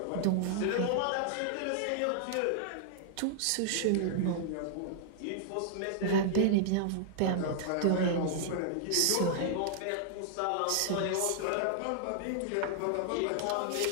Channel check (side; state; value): both; different; correlation -0.01